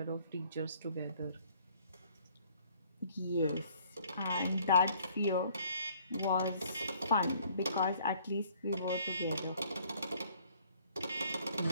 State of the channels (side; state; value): both; inverted; correlation -0.60